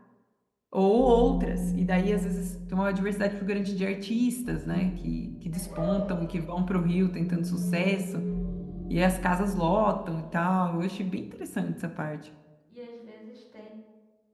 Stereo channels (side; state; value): both; identical; correlation 1.00